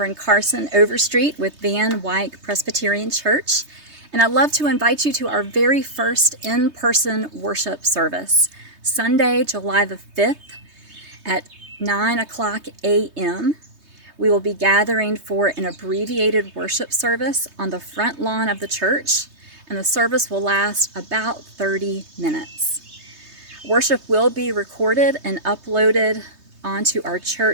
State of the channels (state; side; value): late; left; 3.2 ms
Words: Carson Overstreet with Van Wyck Presbyterian Church, and I'd love to invite you to our very first in-person worship service, Sunday, July the 5th at 9 o'clock a.m. We will be gathering for an abbreviated worship service on the front lawn of the church, and the service will last about 30 minutes. Worship will be recorded and uploaded onto our